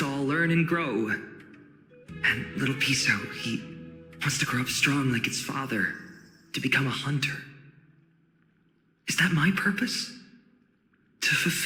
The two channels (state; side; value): identical; both; correlation 1.00